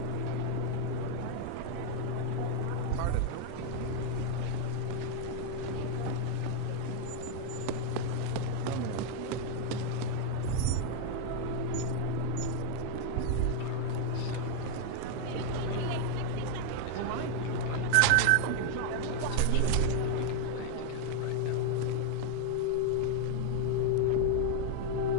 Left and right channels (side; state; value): both; different; correlation 0.00